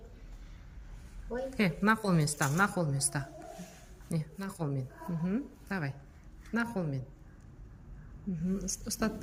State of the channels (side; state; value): both; identical; correlation 1.00